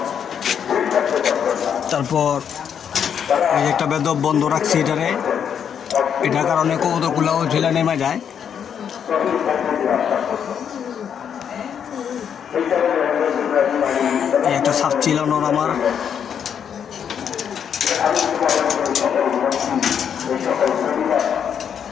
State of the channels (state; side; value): quieter; right; 8.1 dB